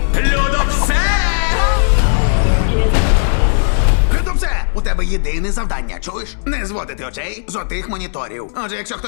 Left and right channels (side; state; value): right; silent; digital silence